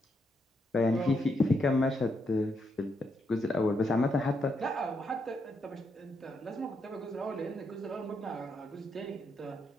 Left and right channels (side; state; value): both; normal; correlation 0.79